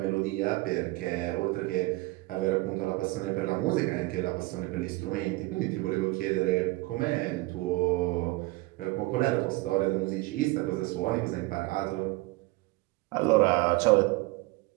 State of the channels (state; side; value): quieter; left; 21.8 dB